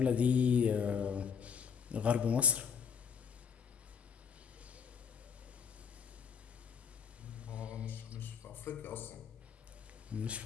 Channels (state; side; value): quieter; right; 6.9 dB